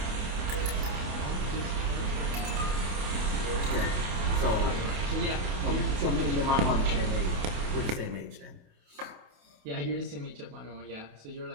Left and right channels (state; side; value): late; left; 28 ms